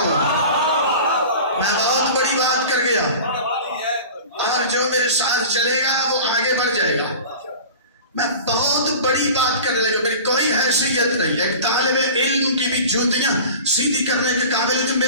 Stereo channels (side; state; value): both; inverted; correlation -0.37